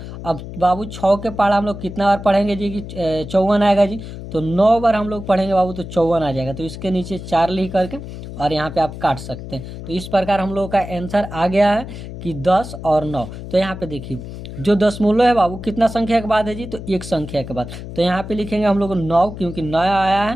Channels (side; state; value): left; noise; hum, 11 dB below the sound